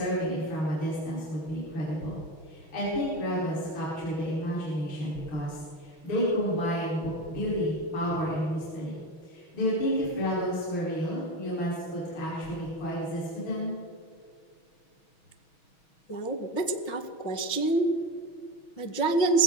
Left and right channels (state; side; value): late; right; 6.2 ms